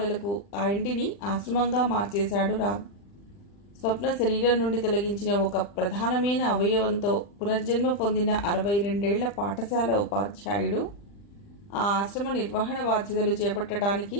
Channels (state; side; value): late; right; 40 ms